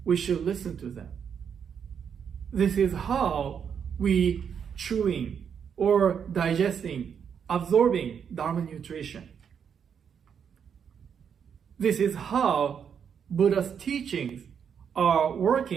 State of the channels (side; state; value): left; quieter; 7.5 dB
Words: we should listen to them. This is how we chewing or digesting, absorbing Dharma nutrition. This is how Buddha's teachings are